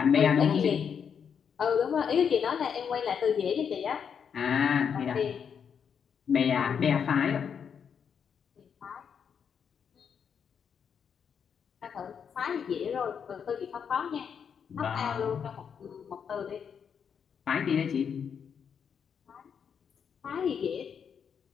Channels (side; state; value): right; quieter; 7.2 dB